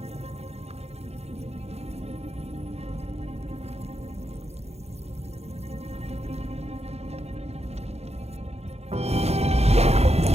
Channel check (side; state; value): left; late; 0.31 ms